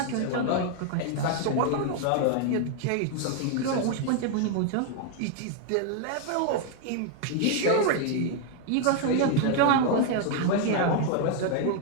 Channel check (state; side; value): different; both; correlation 0.00